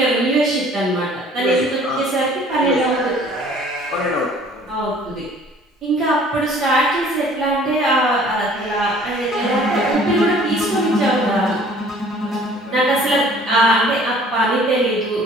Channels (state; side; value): normal; both; correlation 0.53